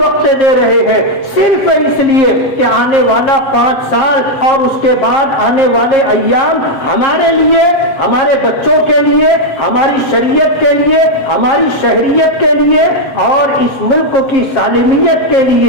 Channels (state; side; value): late; right; 7.5 ms